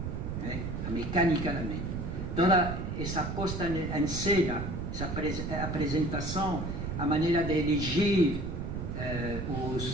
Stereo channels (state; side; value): noise; right; rumble, 4 dB below the sound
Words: a mecânica da mídia. Toda essa posta em cena, essa apresentação, a maneira de elegir